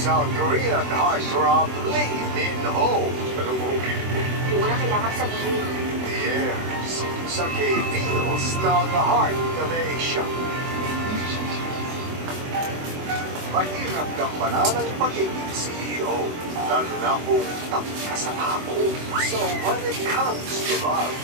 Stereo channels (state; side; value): late; left; 24 ms